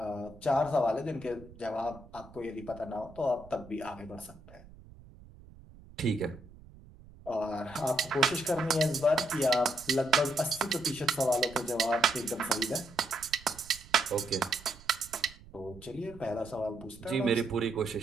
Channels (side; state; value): right; noise; rumble, 20 dB below the sound